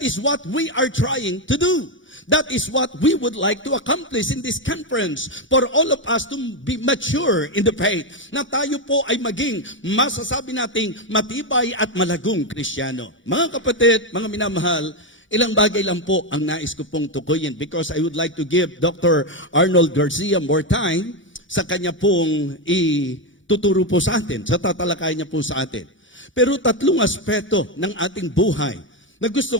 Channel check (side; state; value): both; normal; correlation 0.07